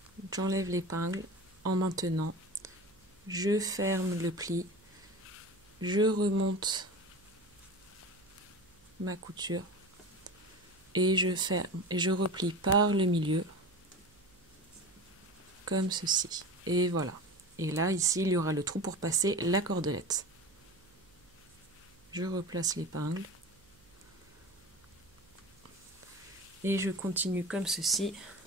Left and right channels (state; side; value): noise; right; hum, 29 dB below the sound